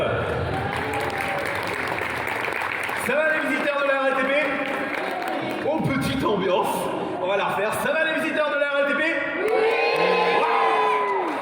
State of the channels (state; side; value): identical; both; correlation 1.00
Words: Ça va les visiteurs de la RATP? Oh, petite ambiance. On va la refaire. Ça va les visiteurs de la RATP? Oui.